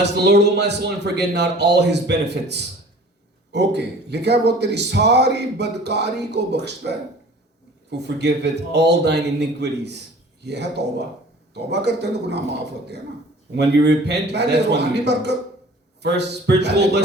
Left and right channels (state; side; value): normal; both; correlation 0.47